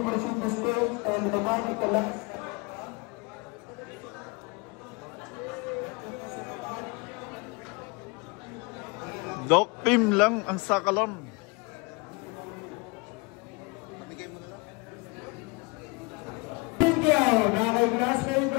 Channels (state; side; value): quieter; right; 28.4 dB